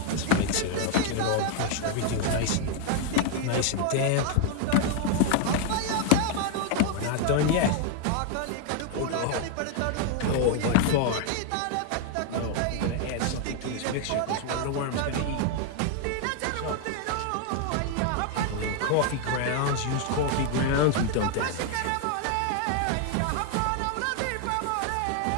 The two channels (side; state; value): both; different; correlation 0.00